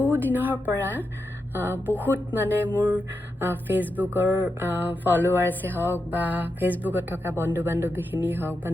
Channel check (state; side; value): normal; both; correlation 0.87